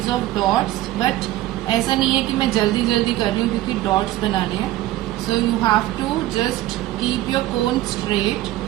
of dots, but ऐसा नहीं है कि मैं जल्दी जल्दी कर रही हूँ क्योंकि dots बनाने हैं. So you have to just keep your cone straight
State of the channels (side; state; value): left; quieter; 15.7 dB